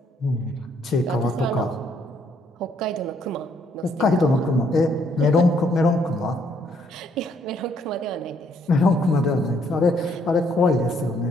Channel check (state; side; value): normal; both; correlation 0.69